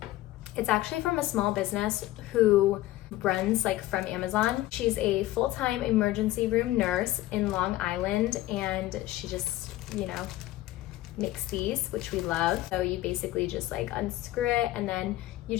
It's actually from a small business who runs like from Amazon. She's a full-time emergency room nurse in Long Island, and she just, you know, Mixies, which we love. So you basically just like unscrew it and then you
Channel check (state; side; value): quieter; right; 16.3 dB